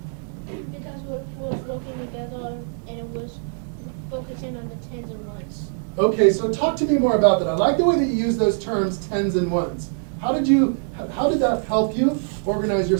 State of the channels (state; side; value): silent; left; digital silence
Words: Because we was working together and it was focusing on the tens and ones. Okay, so talk to me more about that. I like the way that you use those terms, tens and ones. How did that help you organize